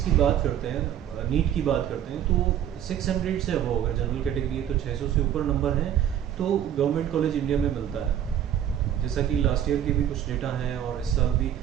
की बात करते हैं, नीट की बात करते हैं, तो 600 से अबव अगर जनरल कैटेगरी है तो 600 से ऊपर नंबर है तो गवर्नमेंट कॉलेज इंडिया में मिलता है। जैसा कि लास्ट ईयर के भी कुछ डेटा हैं और इस साल भी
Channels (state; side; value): quieter; left; 10.3 dB